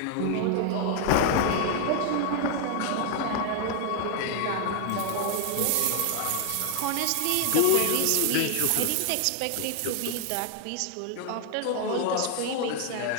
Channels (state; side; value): different; both; correlation 0.00